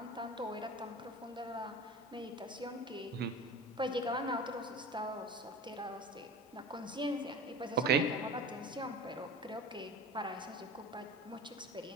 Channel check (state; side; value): normal; both; correlation 0.35